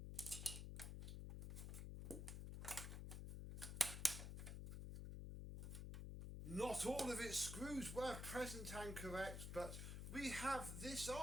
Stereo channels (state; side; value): noise; left; hum, 5 dB below the sound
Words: Not all of its screws were present and correct, but we have this